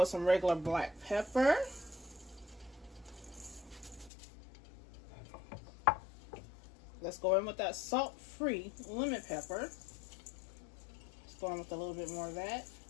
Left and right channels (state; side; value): drops out; right; at 4.1 s